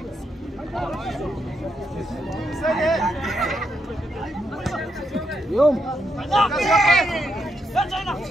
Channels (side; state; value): both; normal; correlation 0.80